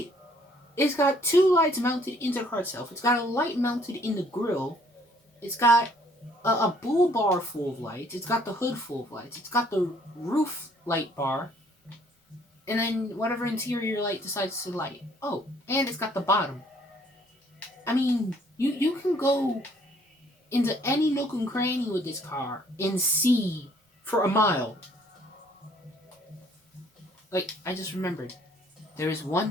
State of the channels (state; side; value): normal; both; correlation 0.62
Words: It's got 2 lights mounted into the car itself. It's got a light mounted in the grill. It's got a bull bar full of lights. It's got the hood full of lights. It's got the roof light bar. And then whatever interior light decides to light. Oh, and it's got the bottom. I mean, you can go into any nook and cranny with this car and see for a mile. Like, I just remembered. There is